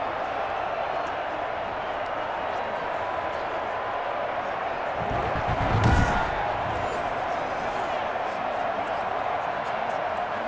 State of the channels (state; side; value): identical; both; correlation 1.00